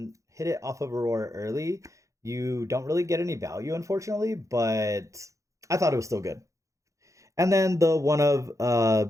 off of Aurora early, you don't really get any value, unfortunately, but I thought it was still good. And then the one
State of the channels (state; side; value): late; left; 0.15 ms